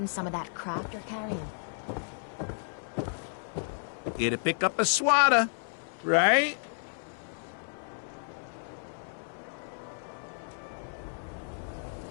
some of that crap you're carrying. Here to pick up a swatter, right?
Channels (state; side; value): silent; right; digital silence